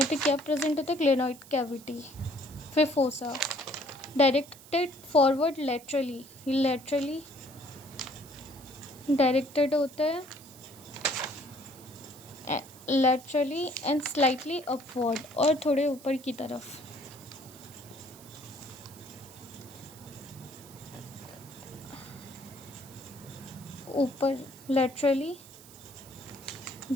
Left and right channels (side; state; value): right; noise; hiss, 20 dB below the sound